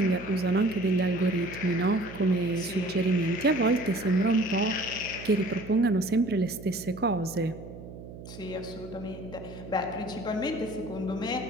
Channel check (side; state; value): right; noise; hum, 14 dB below the sound